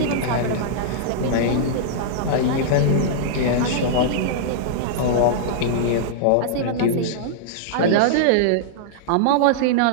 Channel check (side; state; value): both; different; correlation -0.02